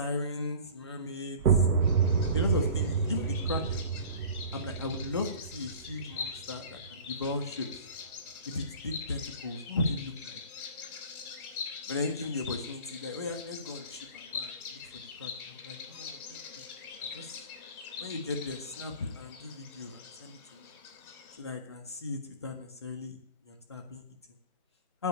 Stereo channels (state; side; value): inverted; both; correlation -0.42